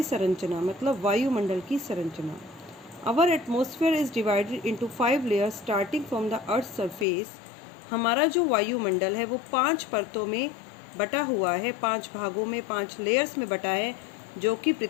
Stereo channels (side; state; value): right; drops out; at 7.1 s